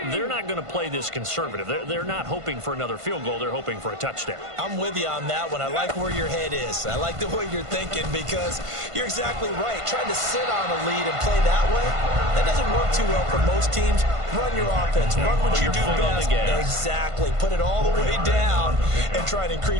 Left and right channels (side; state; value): left; late; 1.5 ms